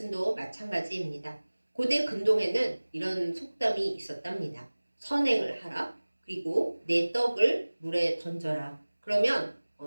마찬가지입니다. 고대 근동에는 이런 속담이 있었답니다. 선행을 하라. 그리고 내 떡을 물에 던져라. 그러면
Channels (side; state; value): both; inverted; correlation -1.00